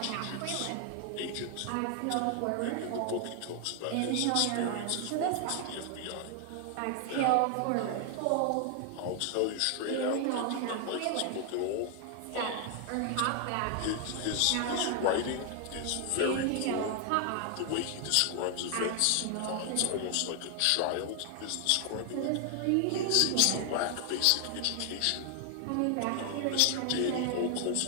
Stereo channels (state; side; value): different; both; correlation 0.00